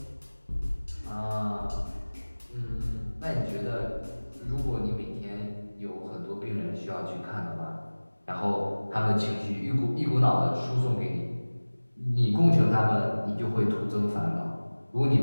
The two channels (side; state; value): both; inverted; correlation -1.00